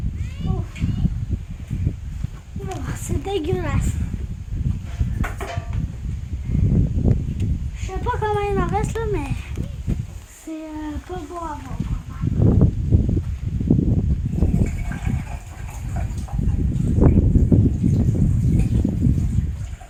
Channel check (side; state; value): both; identical; correlation 1.00